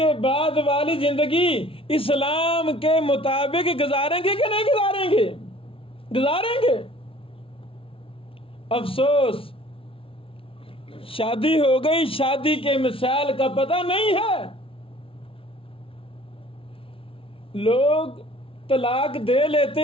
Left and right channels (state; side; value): late; right; 0.26 ms